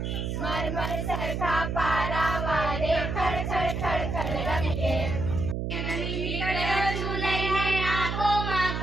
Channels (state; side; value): noise; right; hum, 2 dB below the sound